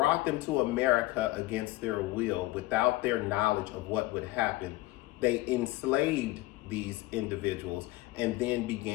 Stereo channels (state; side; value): quieter; right; 18.6 dB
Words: them to America against their will, without their knowledge of what would happen. They enslaved these individuals and then